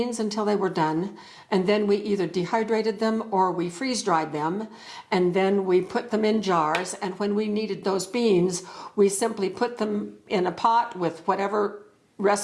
until they were done, and then we either dehydrated them or we freeze dried them, and then we put them in jars. And when we needed those beans, we simply put them in a pot with whatever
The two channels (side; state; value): both; identical; correlation 1.00